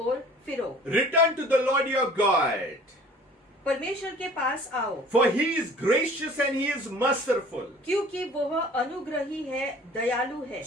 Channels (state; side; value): normal; both; correlation 0.49